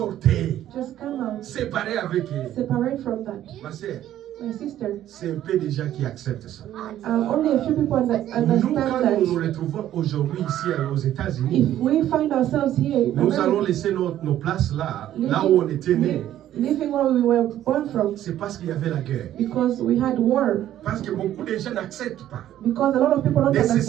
just come out. Séparez avec eux. Separate from that. Ma soeur, My sister, c'est un peu des gens qui acceptent ça. only a few people Nous, understand quand nous nous that retrouvons aujourd'hui ici aux if États-Unis, we find ourselves here, in nous allons America, laisser nos places là où on était nés. living where we were born from, C'est parce qu'il y avait la guerre. because we had war, Parce que beaucoup de gens n'acceptent pas because a lot of people don't de se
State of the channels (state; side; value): quieter; left; 12.2 dB